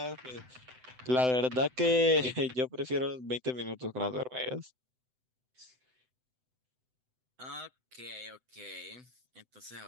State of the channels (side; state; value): left; late; 7.9 ms